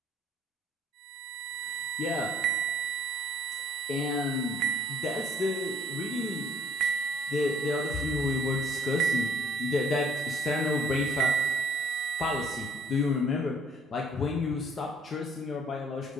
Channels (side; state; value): both; normal; correlation 0.62